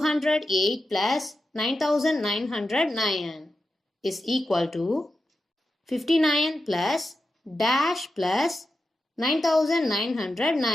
plus 9909 is equal to 59 plus dash plus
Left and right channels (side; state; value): both; normal; correlation 0.90